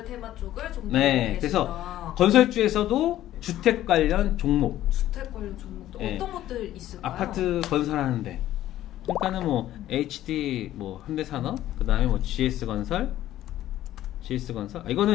테마 쪽을 좀 네, 그래서 건설주에서도 주택 관련 종목, 주택 관련 종목도 네. 어떤 것들 있을까요? 아파트 건설하는데, 그러니까는 뭐 HD, 뭐 현대산업, 그 다음에 뭐 GS 건설. 이거는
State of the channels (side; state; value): right; quieter; 13.4 dB